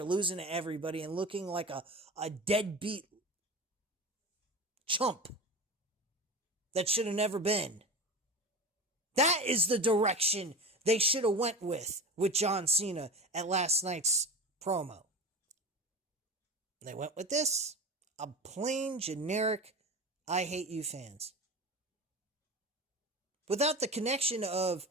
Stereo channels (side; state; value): both; normal; correlation 0.29